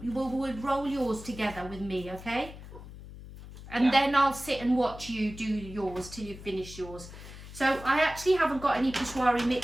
We'll roll yours together with me, okay? And then I'll sit and watch you do yours till you finish yours. So I actually haven't got any Peshwari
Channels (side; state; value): left; noise; hum, 14 dB below the sound